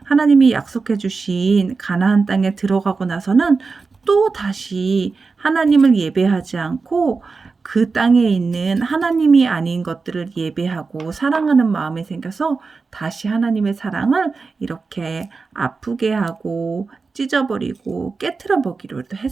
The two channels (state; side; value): quieter; left; 4.4 dB